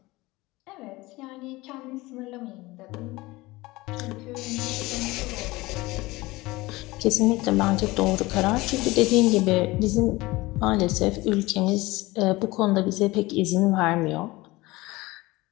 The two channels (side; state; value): right; quieter; 20.7 dB